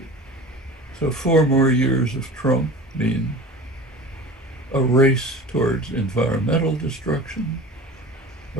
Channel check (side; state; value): both; normal; correlation 0.37